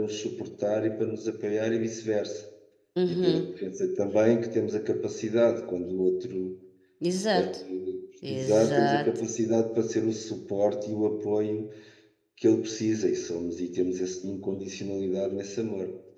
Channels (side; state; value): both; identical; correlation 1.00